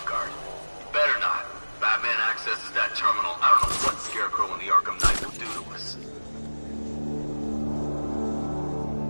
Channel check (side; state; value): both; inverted; correlation -1.00